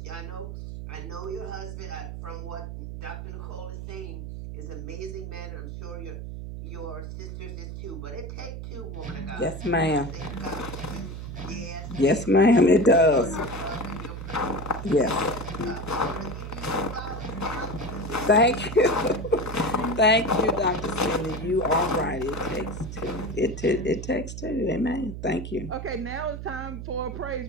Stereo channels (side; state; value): right; noise; hum, 8 dB below the sound